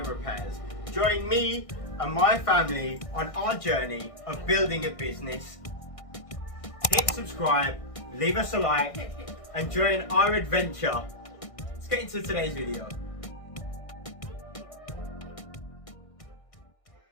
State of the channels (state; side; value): late; right; 1.6 ms